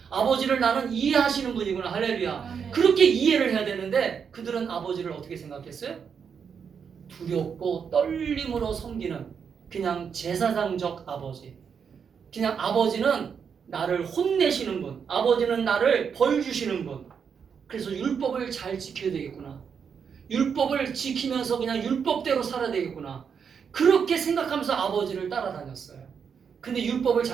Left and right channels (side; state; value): left; quieter; 6.8 dB